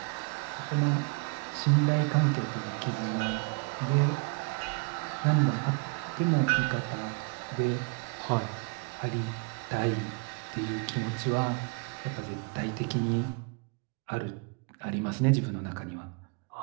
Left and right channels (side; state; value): left; quieter; 33.5 dB